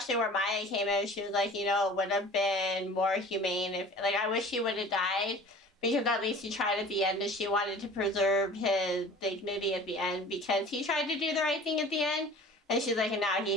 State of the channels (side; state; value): both; normal; correlation 0.44